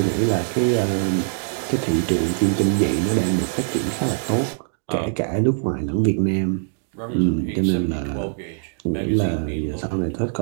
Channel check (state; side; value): silent; left; digital silence